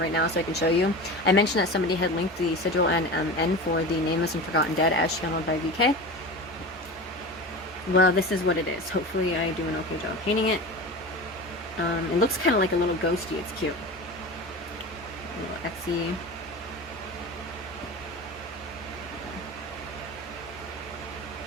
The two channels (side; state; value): both; normal; correlation 0.30